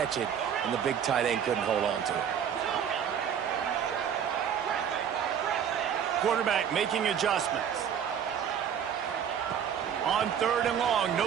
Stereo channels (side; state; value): left; quieter; 8.4 dB